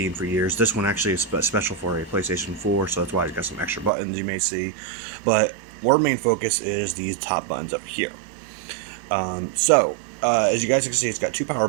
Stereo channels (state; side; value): drops out; left; at 3.9 s